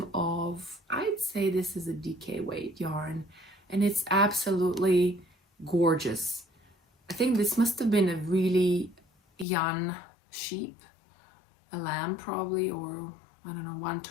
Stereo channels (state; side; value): drops out; right; at 9.5 s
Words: of, I'd say this is a DK weight yarn, and it's absolutely gorgeous. I think this must have been a really young sheep, a lamb probably, or I don't know,